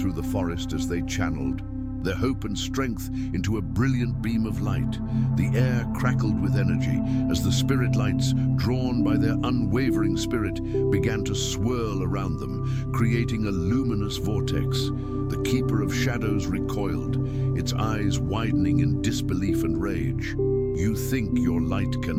the forest as they channeled their hope and strength into a brilliant beam of light. The air crackled with energy as the spirit lights, drawn by their unwavering spirit, began to swirl around them, creating a luminous vortex. The Keeper of Shadows recoiled, its eyes widening in disbelief and rage. "You think your light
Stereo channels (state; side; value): identical; both; correlation 1.00